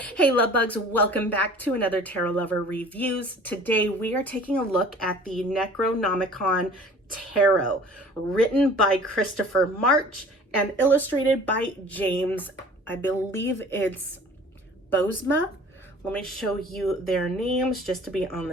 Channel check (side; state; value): both; normal; correlation 0.47